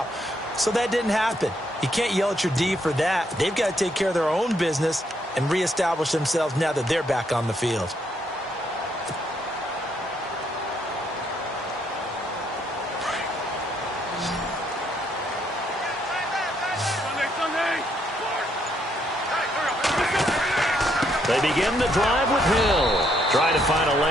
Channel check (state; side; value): normal; both; correlation 0.73